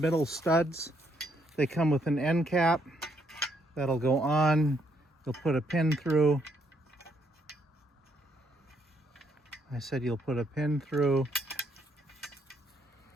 studs. They come with an end cap that'll go on. You'll put a pin through. I said you'll put a pin through.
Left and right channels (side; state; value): both; normal; correlation 0.72